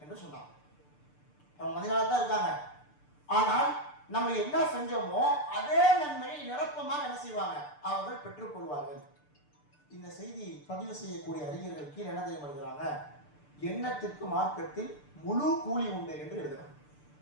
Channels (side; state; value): right; late; 6.8 ms